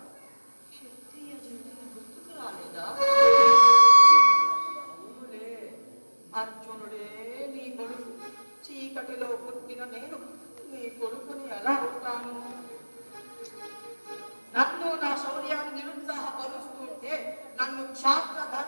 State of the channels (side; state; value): both; inverted; correlation -1.00